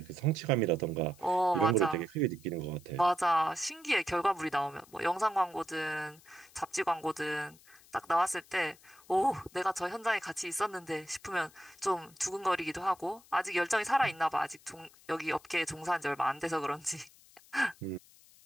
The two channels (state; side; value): noise; left; hiss, 25 dB below the sound